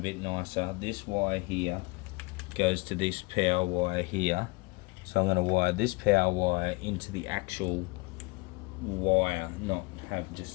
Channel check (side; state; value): right; quieter; 25.9 dB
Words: nicer. This wire here goes to this power wire here. So I'm going to wire this power wire into the actual wire, not have